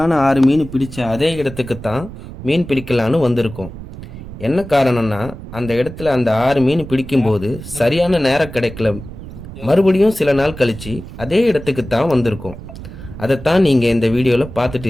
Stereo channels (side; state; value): right; noise; rumble, 13 dB below the sound